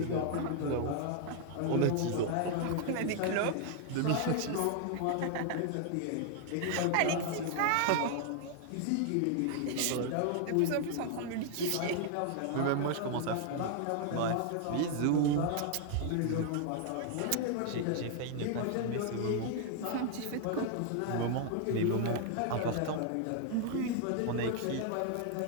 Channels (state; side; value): different; both; correlation 0.00